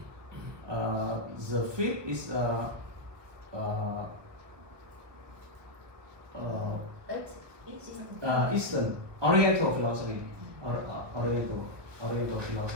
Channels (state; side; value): late; left; 1.3 ms